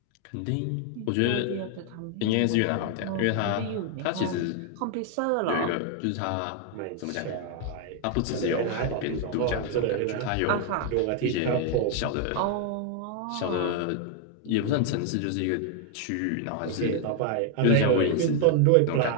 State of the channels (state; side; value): different; both; correlation 0.00